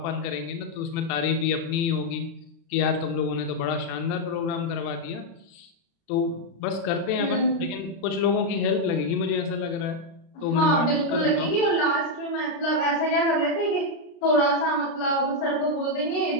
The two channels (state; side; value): late; right; 36 ms